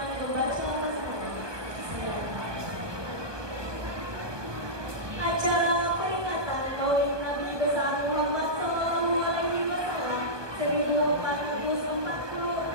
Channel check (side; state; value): left; late; 1.2 ms